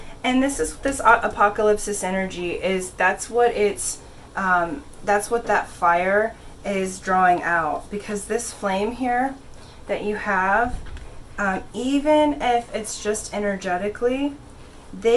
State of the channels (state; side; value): identical; both; correlation 1.00